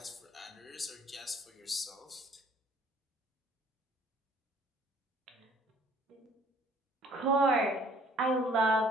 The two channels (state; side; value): normal; both; correlation 0.57